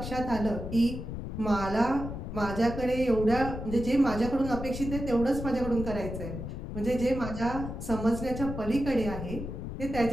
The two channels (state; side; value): noise; left; rumble, 7 dB below the sound